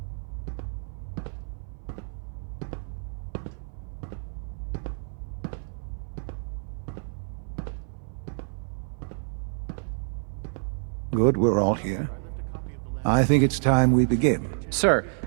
Good, we're all here. I think it's time we begin. Sir,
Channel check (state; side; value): silent; left; 56 dB below the other